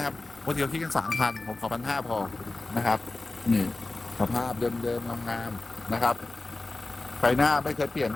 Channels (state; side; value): quieter; right; 3.2 dB